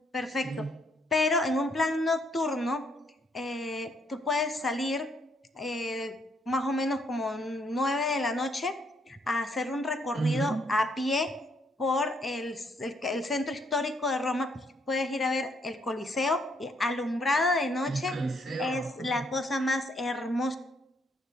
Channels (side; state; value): both; normal; correlation 0.71